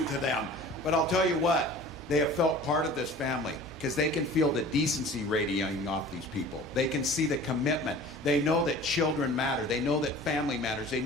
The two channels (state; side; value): normal; both; correlation 0.43